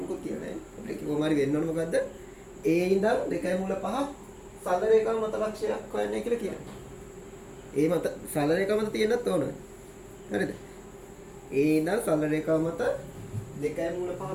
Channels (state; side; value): identical; both; correlation 1.00